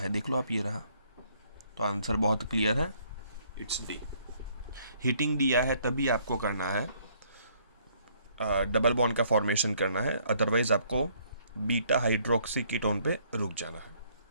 देख लो आप, ये रहा। तो आंसर बहुत क्लियर है, इट्स डी। हीटिंग दिया है तभी आपको करना है, डबल बॉन्ड का फॉर्मेशन करना है, अदरवाइज आपको बीटा हाइड्रोक्सी कीटोन पे रुक जाना है।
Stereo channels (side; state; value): both; inverted; correlation -0.65